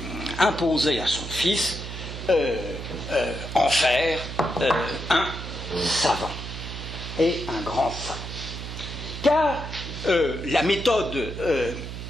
imposer à son fils, en faire un savant, et un grand savant. Car la méthode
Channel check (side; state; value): right; noise; hum, 8 dB below the sound